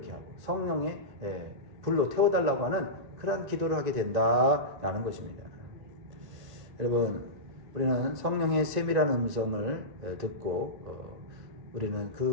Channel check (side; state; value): left; late; 1.9 ms